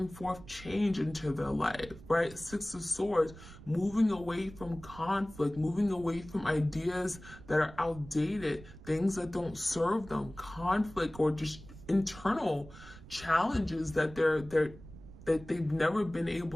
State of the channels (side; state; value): right; noise; rumble, 17 dB below the sound